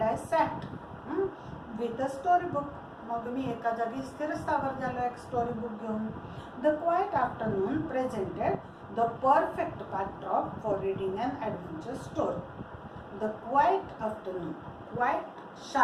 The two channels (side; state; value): both; identical; correlation 1.00